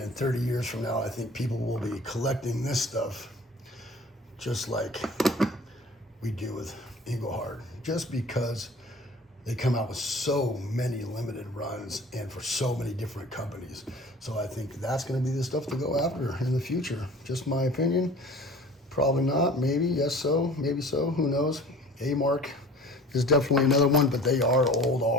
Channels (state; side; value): normal; both; correlation 0.45